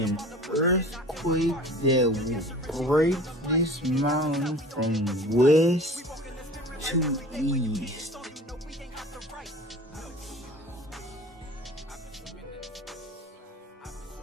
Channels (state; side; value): normal; both; correlation 0.41